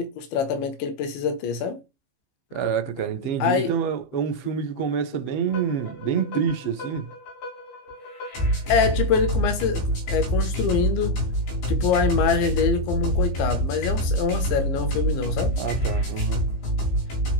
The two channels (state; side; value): late; right; 15 ms